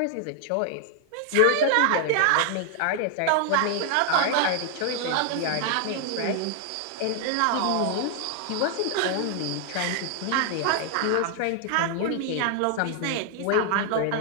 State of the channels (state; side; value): different; both; correlation 0.00